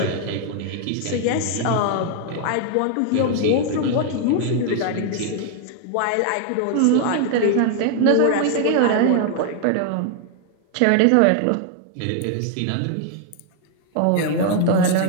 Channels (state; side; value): different; both; correlation 0.00